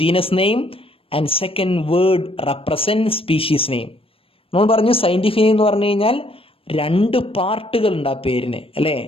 genus name and second word represent species name. നമ്മൾ പറഞ്ഞു സയന്റിഫിക് നെയിം എന്ന് പറഞ്ഞു കഴിഞ്ഞാൽ 2 പാർട്ടുകൾ ഉണ്ട് ആ പേരിന്, അല്ലേ?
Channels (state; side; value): late; right; 0.27 ms